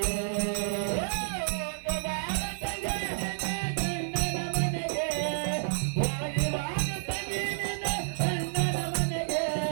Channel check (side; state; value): left; silent; 57 dB below the other